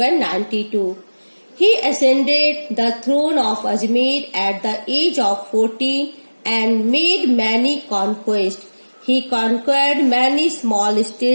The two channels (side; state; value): both; inverted; correlation -1.00